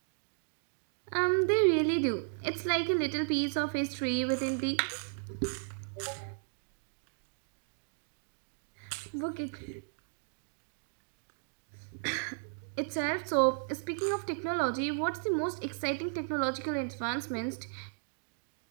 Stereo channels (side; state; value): left; silent; digital silence